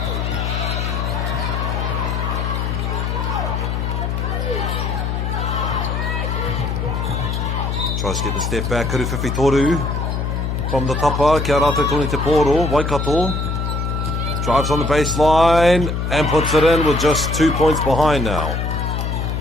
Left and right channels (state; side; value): noise; left; hum, 1 dB below the sound